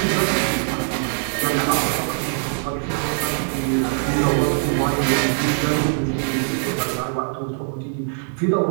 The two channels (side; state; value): left; silent; digital silence